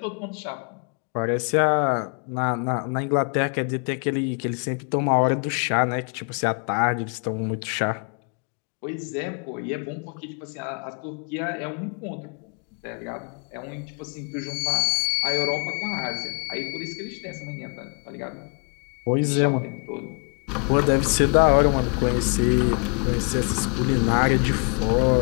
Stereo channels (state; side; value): quieter; right; 38.6 dB